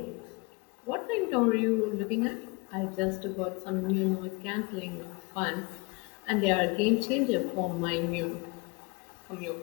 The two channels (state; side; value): quieter; right; 27.2 dB